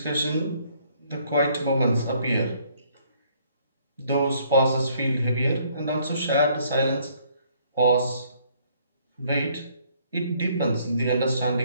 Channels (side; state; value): both; inverted; correlation -0.65